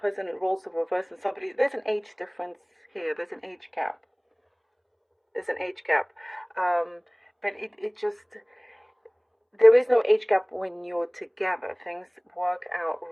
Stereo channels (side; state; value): both; identical; correlation 1.00